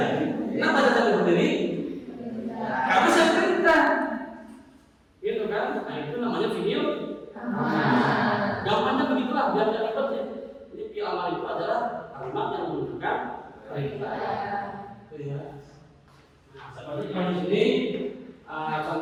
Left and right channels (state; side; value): identical; both; correlation 1.00